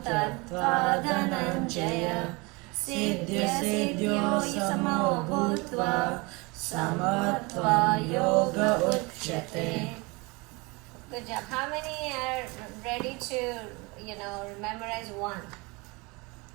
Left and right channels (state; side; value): quieter; left; 26.4 dB